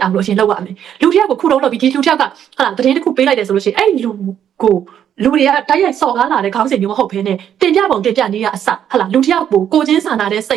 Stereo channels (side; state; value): left; quieter; 9.5 dB